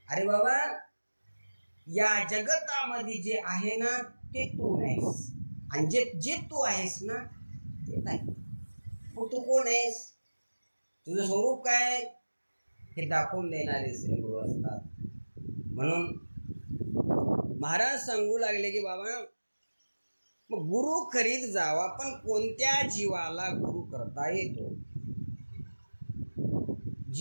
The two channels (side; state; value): both; inverted; correlation -1.00